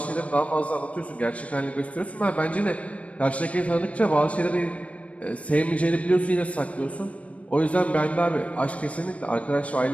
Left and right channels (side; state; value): right; late; 0.065 ms